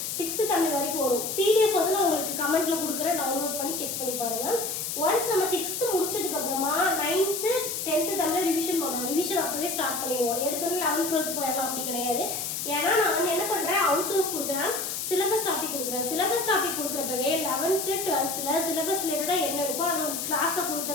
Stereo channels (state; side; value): noise; left; hiss, 3 dB below the sound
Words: 6th தமிழ் வரைக்கும் வரும். பிடிஎஃப் வந்து நான் உங்களுக்கு கமெண்ட்ல கொடுக்குறேன், டவுன்லோட் பண்ணி செக் பண்ணி பாருங்க. ஒன்ஸ் நம்ம 6th முடிச்சதுக்கு அப்புறமா 9th 10th தமிழ் ரிவிஷன் பண்ணணும். ரிவிஷன் அப்பவே ஸ்டார்ட் பண்ணிடுவோம். எடுத்தோடனே 11th 12th போயிடலாம் அப்படி கிடையாது. ஏன்னா நான் வந்து என்ன பண்றேன், அவுட் சோர்ஸ் கொடுக்குறேன், சிலபஸ் டாபிக் கொடுக்குறேன். சிலபஸ் டாபிக் கொடுக்குறப்பவே 11th 12th சிலபஸ் ரிலேட்டடா என்ன இருக்கோ அதை கிளாஸை